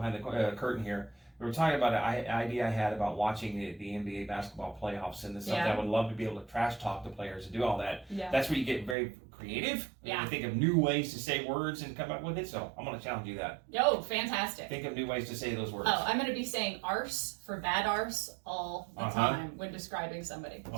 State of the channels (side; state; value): left; drops out; at 9.0 s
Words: the curtain here. We were talking about an idea I had about watching the NBA basketball playoffs, and it's something I would love to be able to trash talk the players and do all that. Yeah. That's where you get very creative. Yeah. You think of new ways to say words and come up with it. So I'm going to challenge you that. Oh, fantastic. Think of new ways to say those words. Oh, I'm going to be saying arse for bad arse all the time when describing somebody.